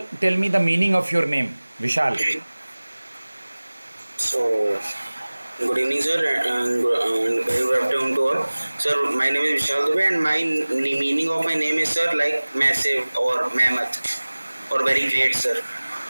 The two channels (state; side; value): inverted; both; correlation -1.00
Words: tell me the meaning of your name, Vishal. So, good evening, sir, and very good afternoon to all. Sir, my name is Vishal Dubey, and my meaning of my name is, sir, like massive or mammoth or very great, sir.